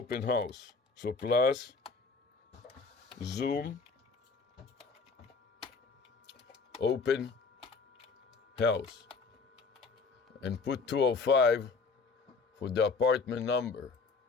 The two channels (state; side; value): quieter; right; 4.5 dB